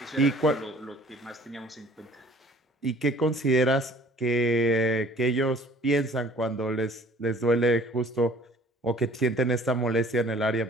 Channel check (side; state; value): both; normal; correlation 0.53